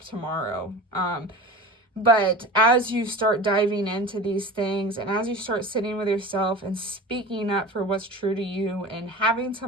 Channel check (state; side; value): normal; both; correlation 0.34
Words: tomorrow. But as you start diving into these things, and as you start sitting with yourself and speaking up for what's true to you and having